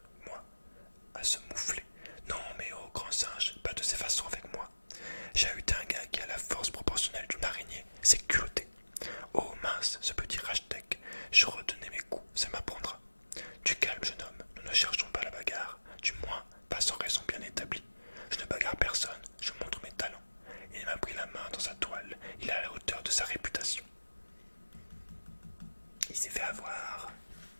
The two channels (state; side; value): inverted; both; correlation -1.00